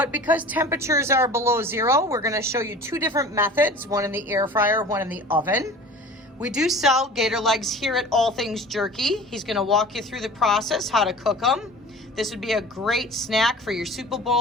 because temperatures are below zero, we're going to show you two different methods, one in the air fryer, one in the oven. We do sell gator legs here at All Things Jerky. He's going to walk you through the process, how to cook them. This would be a great snack for your Super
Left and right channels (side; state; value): both; normal; correlation 0.41